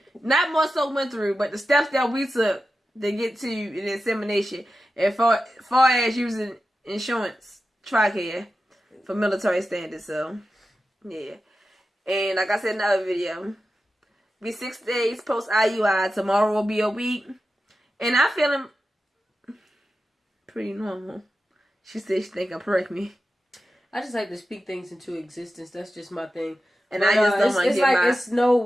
Not more so went through, but the steps that we took to get to the insemination, as far as using insurance, Tricare, for military standards. So, yeah. And like I said in the other video, be 6 days post IUI. Tomorrow will be a week. And I'm feeling pretty normal. She said she think I'm pregnant. I just like to speak things into existence. That's just my thing. And I just don't want to get like it's no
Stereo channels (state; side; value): normal; both; correlation 0.92